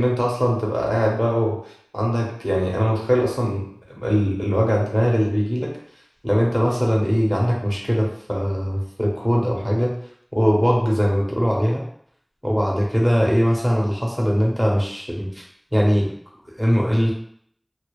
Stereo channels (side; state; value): both; identical; correlation 1.00